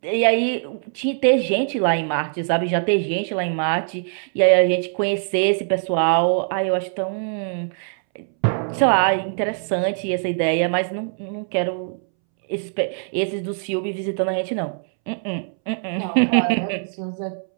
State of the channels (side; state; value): left; silent; 64 dB below the other